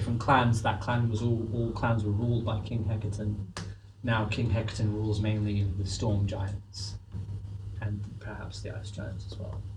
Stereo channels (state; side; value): identical; both; correlation 1.00